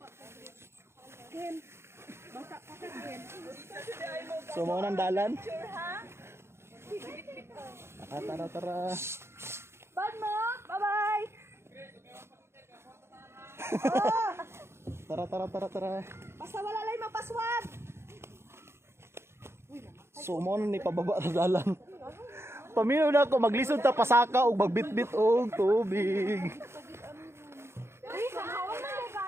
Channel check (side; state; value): left; late; 0.12 ms